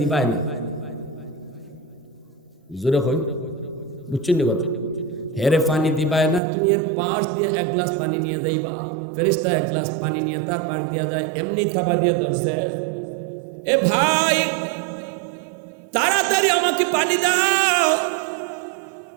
না। জোরে কই, বুঝছেন নি কথা? হেরে পানি দিবাই না, তুমি এর পাশ দিয়ে এক গ্লাস পানি নিয়ে যাইবা। ফেরেশতা এক গ্লাস পানি নিয়ে তার পাশ দিয়া যায়, এমনি থাবা দিয়ে ধরছে, এ ভাই তাড়াতাড়ি আমাকে পানি দাও।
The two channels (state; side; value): drops out; left; at 6.4 s